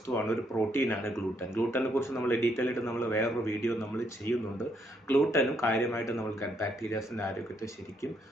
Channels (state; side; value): normal; both; correlation 0.74